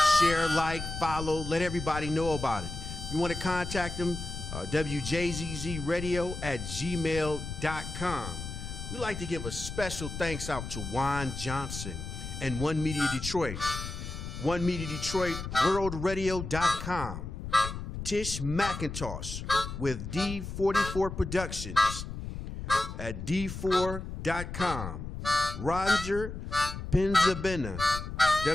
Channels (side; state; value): left; noise; rumble, 7 dB below the sound